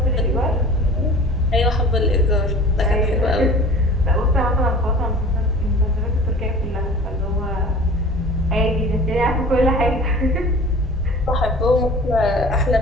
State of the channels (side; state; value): both; normal; correlation 0.43